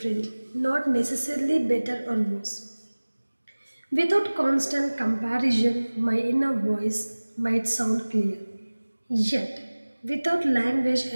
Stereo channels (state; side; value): inverted; both; correlation -1.00